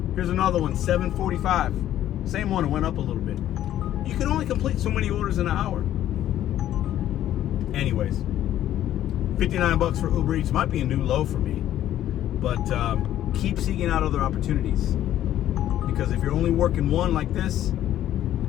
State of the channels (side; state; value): right; quieter; 12.2 dB